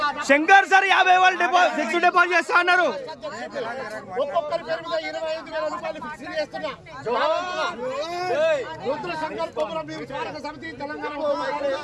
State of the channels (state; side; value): identical; both; correlation 1.00